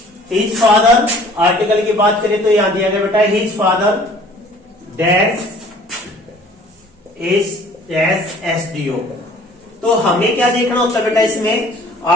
हिज फादर, आर्टिकल की बात करें तो यहां दिया गया बेटा, his father dash is dash SDO। तो हमें क्या देखना होता है बेटा इसमें,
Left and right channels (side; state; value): both; normal; correlation 0.52